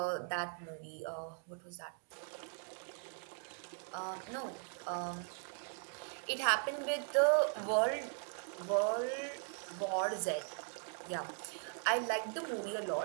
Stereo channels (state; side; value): silent; left; 52 dB below the other